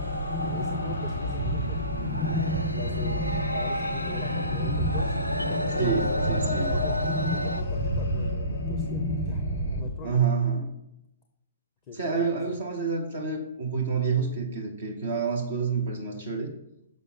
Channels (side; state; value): both; inverted; correlation -0.41